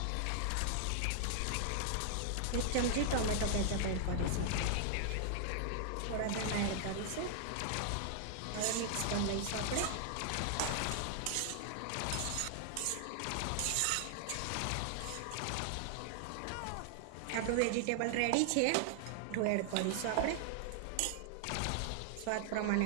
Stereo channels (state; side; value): different; both; correlation 0.00